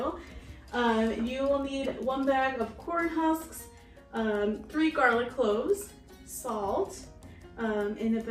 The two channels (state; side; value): identical; both; correlation 1.00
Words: You will need 1 bag of corn husks, 3 garlic cloves, salt, and